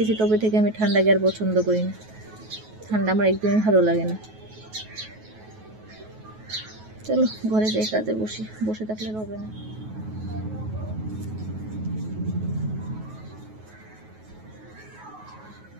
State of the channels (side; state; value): left; late; 9.3 ms